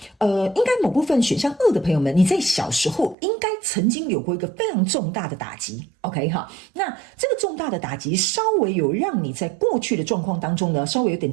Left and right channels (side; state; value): left; drops out; at 3.2 s